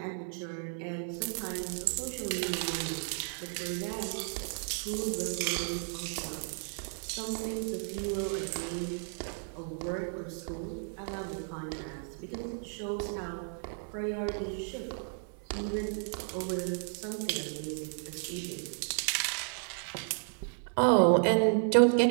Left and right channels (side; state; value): left; silent; 56 dB below the other